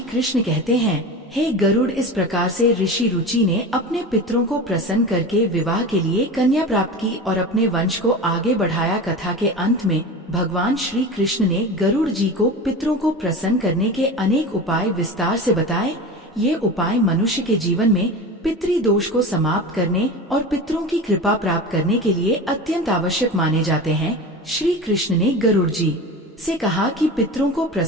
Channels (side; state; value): both; normal; correlation 0.29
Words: कृष्ण कहते हैं, हे गरुड़, इस प्रकार से ऋषि रुचि ने अपने पितरों को प्रसन्न करके विवाह के लिए कन्या प्राप्त की और अपने वंश को आगे बढ़ाया। कथा के अंत में भगवान श्री कृष्ण ने गरुड़ जी को पितरों को प्रसन्न करने के अनेक उपाय विस्तार से बताए। ये उपाय मनुष्य के जीवन में पितृदोष को समाप्त करने और पितरों की कृपा प्राप्त करने के लिए अत्यंत आवश्यक माने जाते हैं। श्री कृष्ण ने गरुड़ जी से कहा कि पितरों को